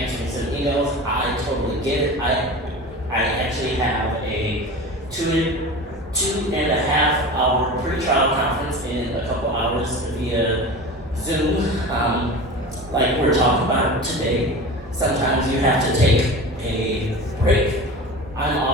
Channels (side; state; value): both; normal; correlation 0.32